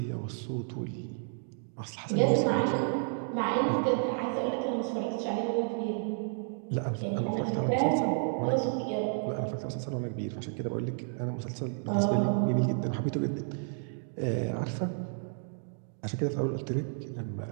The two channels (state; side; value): silent; left; 57 dB below the other